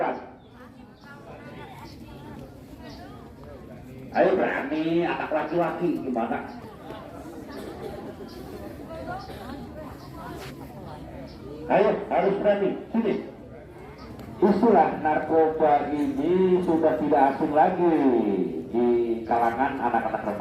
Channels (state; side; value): identical; both; correlation 1.00